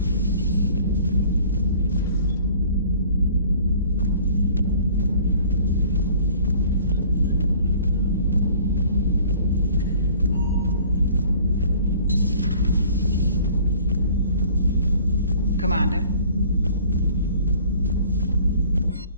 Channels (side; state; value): both; inverted; correlation -0.52